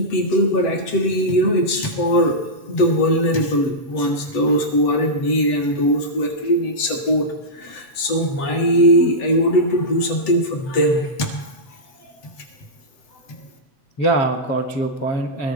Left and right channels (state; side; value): late; right; 7.9 ms